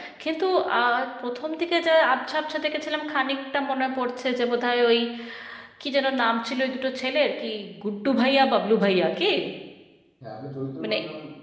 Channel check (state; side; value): identical; both; correlation 1.00